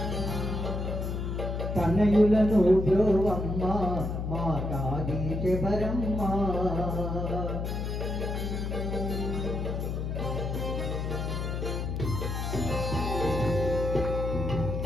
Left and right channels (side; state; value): left; noise; hum, 2 dB below the sound